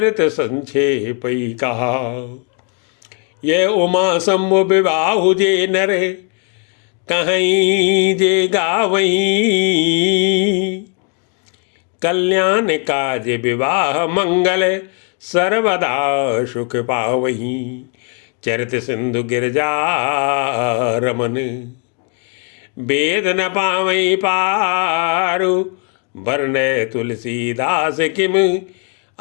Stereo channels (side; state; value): right; quieter; 36.5 dB